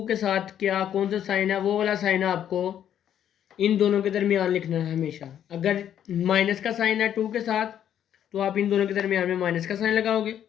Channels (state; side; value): quieter; right; 10.0 dB